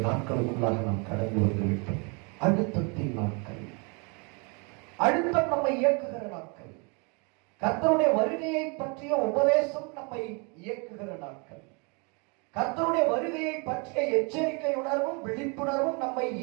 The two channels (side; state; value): left; quieter; 32.8 dB